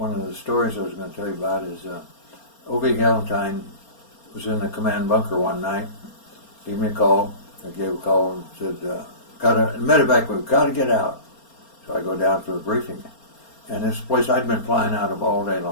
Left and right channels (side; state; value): right; late; 4.3 ms